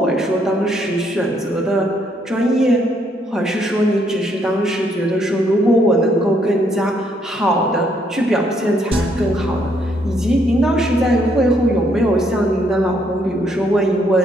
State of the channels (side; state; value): both; normal; correlation 0.71